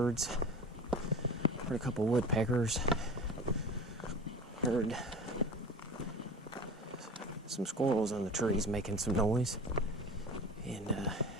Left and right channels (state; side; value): normal; both; correlation 0.36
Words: heard a couple woodpeckers, heard some squirrels in the trees making some noise, and